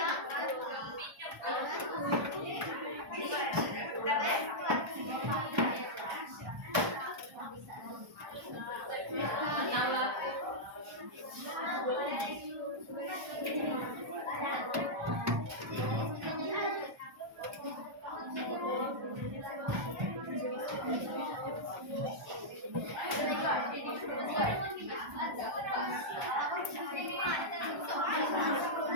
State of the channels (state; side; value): late; left; 1.2 ms